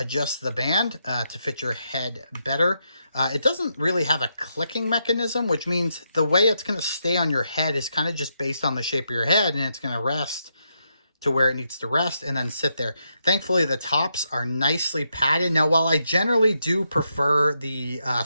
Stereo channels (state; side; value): inverted; both; correlation -0.81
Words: the band to fit your head better. It doesn't really have a clicking mechanism, which means the way it's going to stay on your head is kind of just based on the shape of your head, and it's going to rest to where it needs to rest and then sit there. Thankfully, the tops are nicely padded. Now, while I generally do prefer the